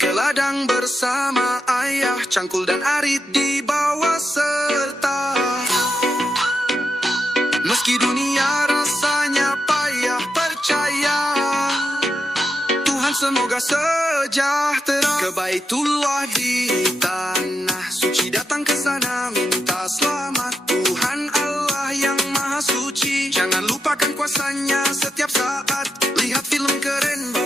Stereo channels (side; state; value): both; normal; correlation 0.85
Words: ladang bersama ayah, Cangkul dan Arit dibawa serta. Meski dunia rasanya payah, percaya Tuhan semoga sejahtera. Ke Baitullah di tanah suci, datang ke sana minta selamat. Tuhan Allah yang maha suci, jangan lupakan kuasanya setiap saat. Lihat film keren